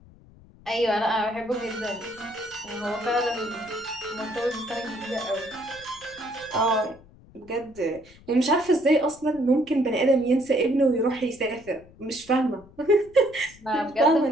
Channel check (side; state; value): left; noise; rumble, 24 dB below the sound